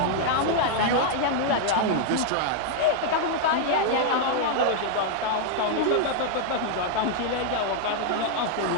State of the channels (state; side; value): different; both; correlation -0.01